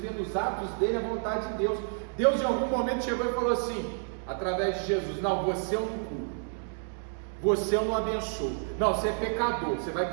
nos atos dele a vontade de Deus. Deus em algum momento chegou e falou assim, através de Jesus: não, você eu não curo, você eu não abençoo, não, você é pecador, você vai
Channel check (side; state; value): left; silent; 58 dB below the other